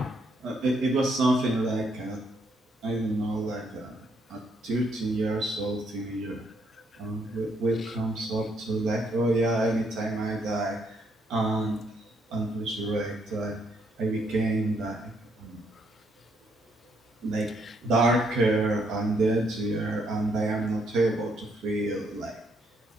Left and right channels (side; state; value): both; normal; correlation 0.73